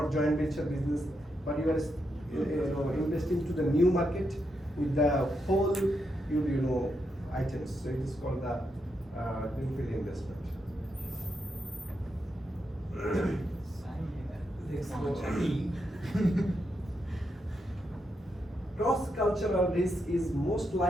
joint venture business, but you are investing to the new market with the whole items. So it is called the greenfield investment. Cross-cultural risk is most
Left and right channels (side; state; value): both; normal; correlation 0.83